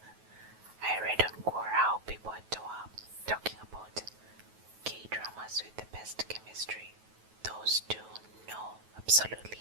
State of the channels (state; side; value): late; left; 9.3 ms